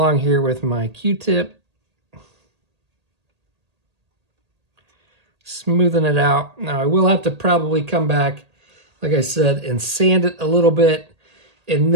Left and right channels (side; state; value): left; late; 1.8 ms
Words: here with my Q-tip, smoothing it out. Now I will have to probably come back, like I said, and sand it a little bit, and